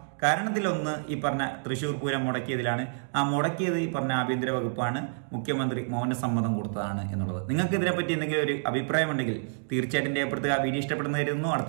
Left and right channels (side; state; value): left; silent; digital silence